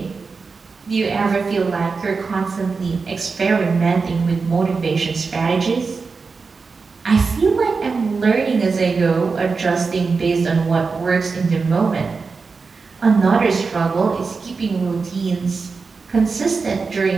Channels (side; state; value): left; quieter; 4.6 dB